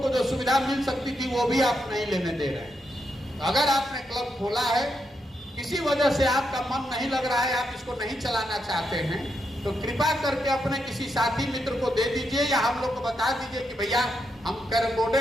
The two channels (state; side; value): normal; both; correlation 0.82